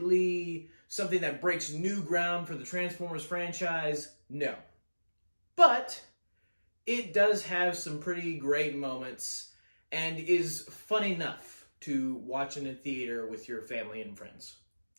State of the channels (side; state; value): both; inverted; correlation -1.00